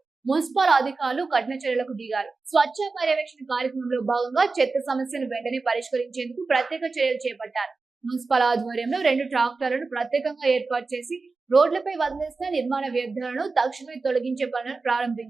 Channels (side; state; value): left; quieter; 4.0 dB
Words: మున్సిపల్ అధికారులు కఠిన చర్యలకు దిగారు. స్వచ్ఛ పర్యవేక్షణ కార్యక్రమంలో భాగంగా చెత్త సమస్యను వెంటనే పరిష్కరించేందుకు ప్రత్యేక చర్యలు చేపట్టారు. మున్సిపల్ ఆధ్వర్యంలో 2 ట్రాక్టర్లను ప్రత్యేకంగా ఏర్పాటు చేసి రోడ్లపై వదిలేసిన నిర్మాణ వ్యర్థాలను తక్షణమే తొలగించే పనులను